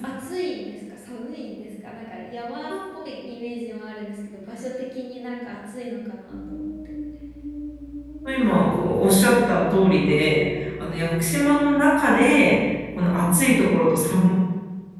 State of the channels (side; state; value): both; identical; correlation 1.00